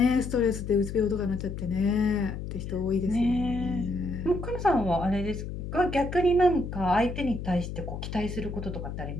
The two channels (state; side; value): noise; left; hum, 7 dB below the sound